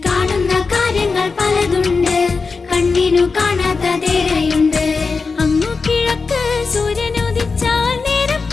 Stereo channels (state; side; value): quieter; right; 4.5 dB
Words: കാണുന്ന കാര്യങ്ങൾ പലതുണ്ട്, കണ്ണിനു കാണാത്തതേറെയുണ്ട്. അങ്ങു കിഴക്ക് സൂര്യനുദിച്ചാൽ നേരം